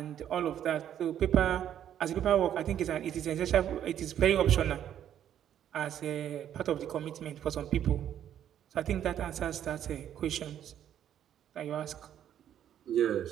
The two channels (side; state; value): left; quieter; 10.3 dB